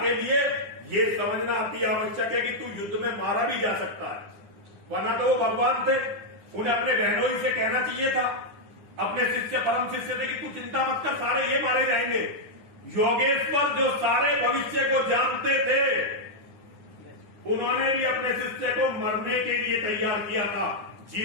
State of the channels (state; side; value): late; left; 9.7 ms